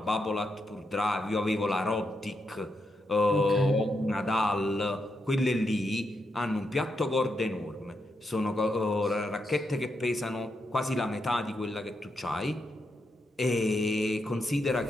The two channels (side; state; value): both; normal; correlation 0.83